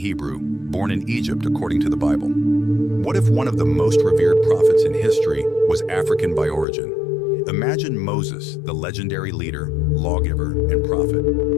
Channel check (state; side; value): drops out; right; at 6.7 s